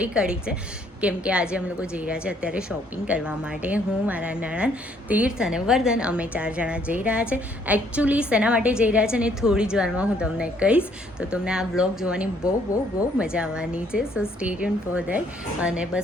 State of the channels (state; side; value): normal; both; correlation 0.66